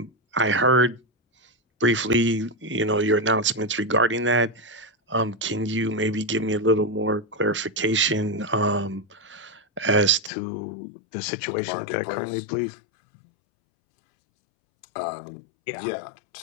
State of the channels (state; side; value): drops out; right; at 10.3 s